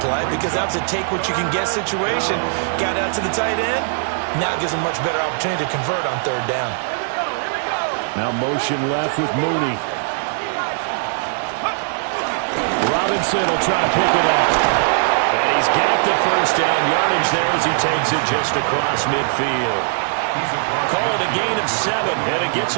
because that was a take-what-you-can-get situation. Got out to the tight end. Now it gives him a much better opportunity to convert on 3rd down. Now motion left with Mooney. Robinson will try to pick it up. And he's got the first down yardage there as he takes it just across midfield. Call it a gain of 7, and it gets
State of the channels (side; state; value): left; silent; digital silence